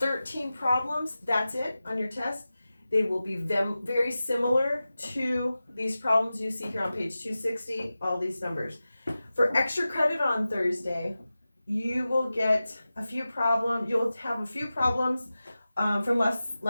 13 problems. That's it on your test. They will be very similar to these problems you see here on page 260, all these numbers. For extra credit on Thursday, you will get a few problems, you'll have a few problems from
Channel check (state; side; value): inverted; both; correlation -0.95